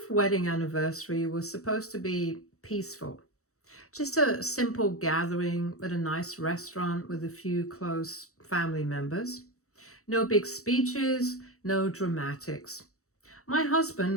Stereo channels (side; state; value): right; late; 0.64 ms